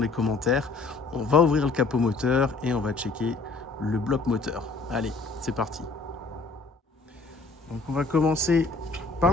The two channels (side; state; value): right; quieter; 3.9 dB